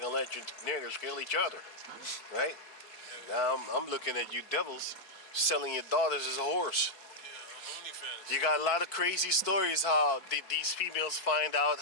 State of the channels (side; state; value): right; late; 4.5 ms